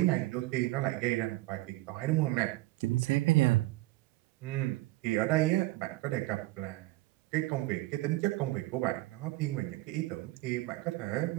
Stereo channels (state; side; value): quieter; left; 19.0 dB